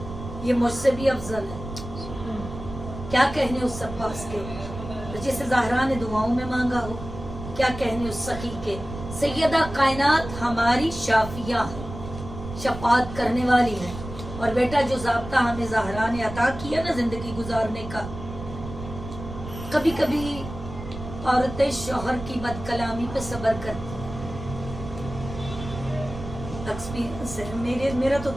ये मुझसे भी अफजल है, क्या कहने उस अब्बास के जिसे ज़हरा ने दुआओं में मांगा हो, क्या कहने उस सखी के। सैयदा कायनात हमारी शाफिया है, शफात करने वाली है। और बेटा जो ज़ाब्ता हमें ज़हरा ने अता किया ना जिंदगी गुजारने का, कभी कभी औरतें शौहर की बदकलामी पे सब्र करती। एक्सपीरियंस है मेरा तो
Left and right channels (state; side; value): noise; right; rumble, 10 dB below the sound